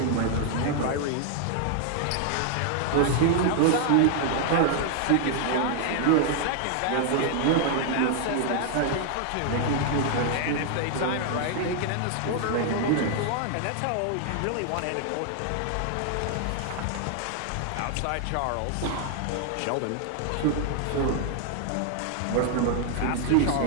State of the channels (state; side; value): different; both; correlation 0.00